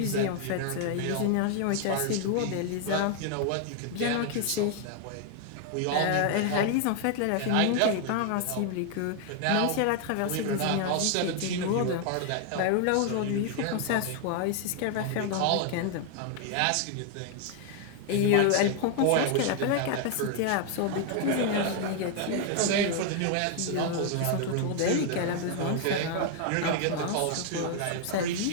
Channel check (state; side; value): different; both; correlation 0.00